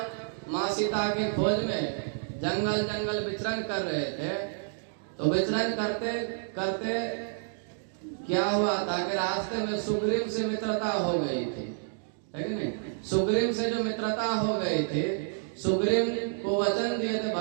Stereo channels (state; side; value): silent; left; digital silence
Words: माँ सीता की खोज में जंगल जंगल विचरण कर रहे थे तो विचरण करते करते क्या हुआ था कि रास्ते में सुग्रीव से मित्रता हो गई थी, है कि नहीं? सुग्रीव से जो मित्रता हो गई थी, सुग्रीव को वचन दिए थे